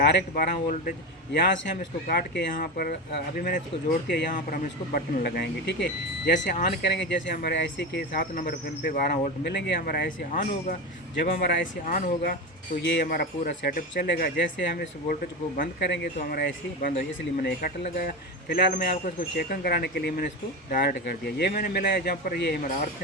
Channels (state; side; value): normal; both; correlation 0.21